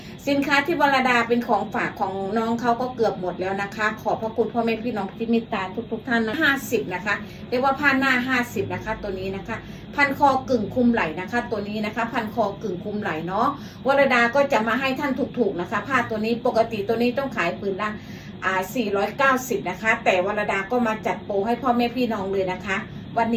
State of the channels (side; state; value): both; identical; correlation 1.00